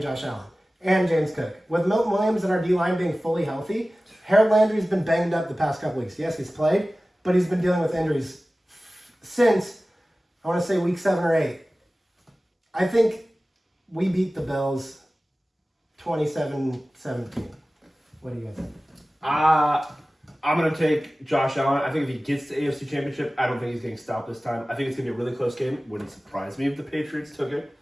Josh Allen and James Cook. With Milton Williams and our D-line being fully healthy, Harold Landry's been banged up the past couple weeks. Yes, he's played, but he's been dealing with injuries since, I want to say, week 7 or 8. I think we beat the Bills 27-17. What do you guys think? I'm going to take Josh Allen. I think if he gets the AFC Championship, I don't think he's getting stopped this time. I think it's going to be a really close game. Wouldn't surprise me if the Patriots took it.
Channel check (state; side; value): normal; both; correlation 0.97